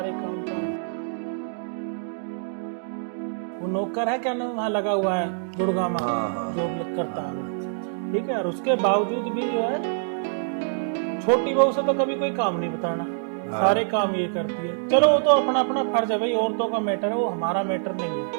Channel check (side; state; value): left; silent; digital silence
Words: काम वो नौकर है क्या नाम वहाँ लगा हुआ है गुड़गांव में, हाँ। जॉब करता है वो, ठीक है। और उसके बावजूद भी जो है छोटी बहू से तो कभी कोई काम नहीं बताना, सारे काम ये करती है। चलो वो तो अपना अपना फर्ज है भाई, औरतों का मैटर है, वो हमारा मैटर नहीं है,